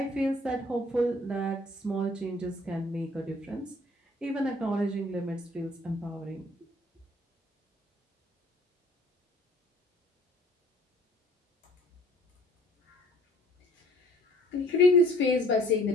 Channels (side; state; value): both; normal; correlation 0.55